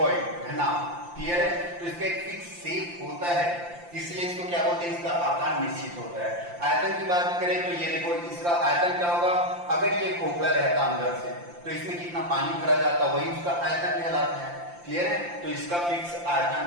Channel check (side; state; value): left; late; 5.8 ms